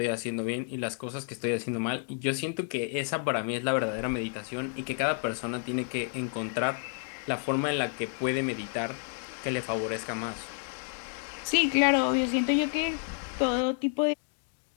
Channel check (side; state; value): right; silent; digital silence